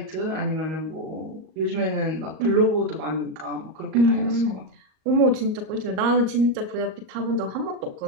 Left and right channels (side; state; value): left; late; 38 ms